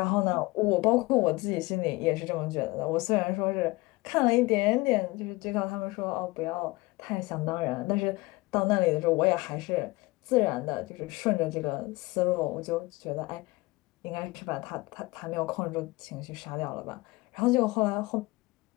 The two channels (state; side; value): quieter; right; 22.2 dB